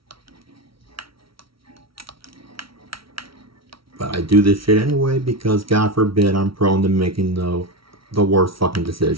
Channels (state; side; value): late; left; 0.75 ms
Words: But I do this shit anyway because God forbid I'm prone to making the worst fucking